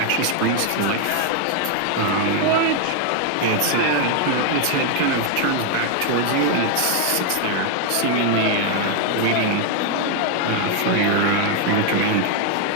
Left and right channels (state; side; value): different; both; correlation 0.00